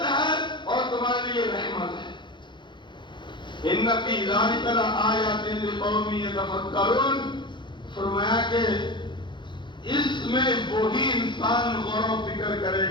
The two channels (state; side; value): late; right; 0.23 ms